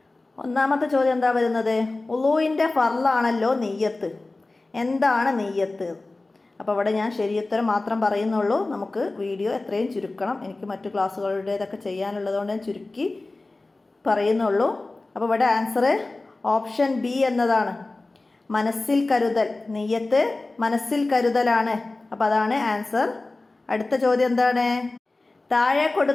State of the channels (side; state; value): right; quieter; 3.2 dB